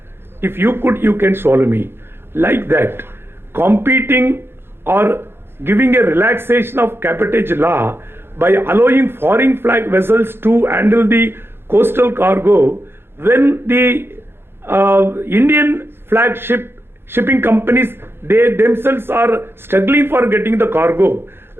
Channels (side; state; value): left; late; 0.11 ms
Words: If you could, you can swallow me. Like that, competing or giving a relaxation of cabotage law by allowing foreign flag vessels to handle the coastal cargo, when the Indian flagship shipping companies, they themselves are struggling for getting the cargo,